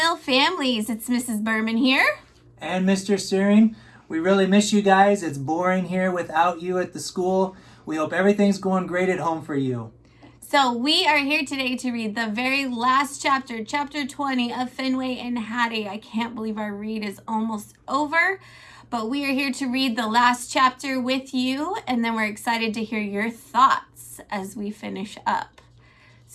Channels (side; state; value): both; identical; correlation 1.00